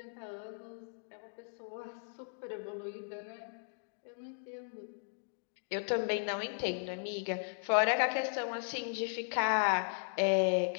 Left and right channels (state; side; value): silent; right; digital silence